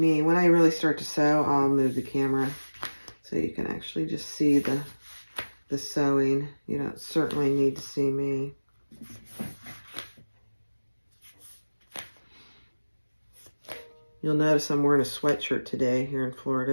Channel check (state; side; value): inverted; both; correlation -1.00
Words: When I really start to sew, I'll move the camera so you can actually just see the sewing. You don't certainly need to see me. You'll notice I'm wearing a sweatshirt today here in Florida.